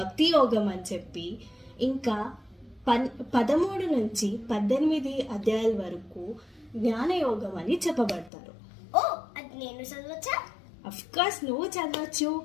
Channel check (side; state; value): right; drops out; at 8.3 s